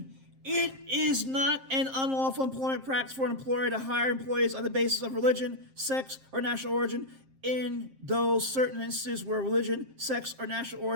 It is not an unlawful employment practice for an employer to hire employees on the basis of religion, sex, or national origin in those certain instances where religion, sex, or national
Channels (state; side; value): late; left; 7.6 ms